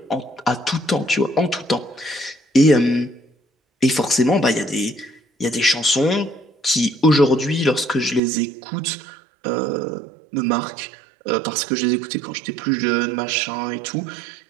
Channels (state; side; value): drops out; left; at 8.2 s